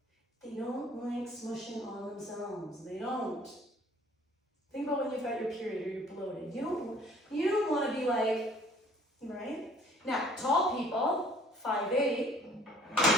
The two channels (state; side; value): normal; both; correlation 0.55